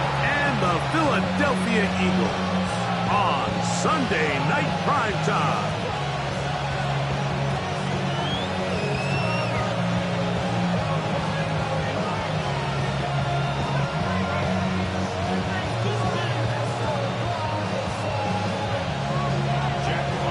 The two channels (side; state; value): both; identical; correlation 1.00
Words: and the Philadelphia Eagles on Sunday Night Primetime.